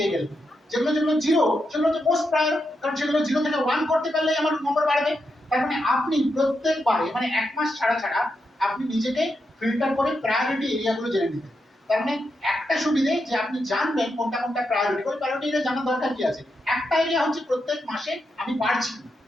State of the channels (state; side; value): normal; both; correlation 0.84